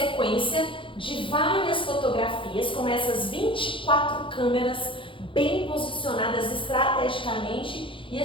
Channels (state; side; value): late; right; 0.25 ms